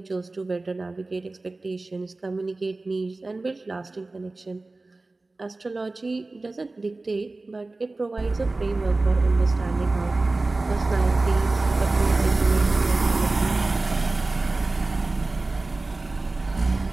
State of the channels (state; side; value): quieter; left; 3.2 dB